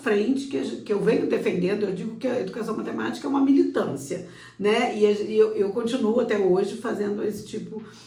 que eu venho defendendo, eu digo que a educação matemática é uma militância, né? E eu continuo até hoje fazendo esse tipo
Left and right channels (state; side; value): identical; both; correlation 1.00